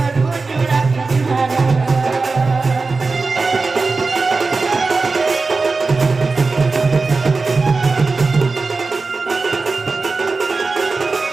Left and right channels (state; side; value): quieter; left; 4.0 dB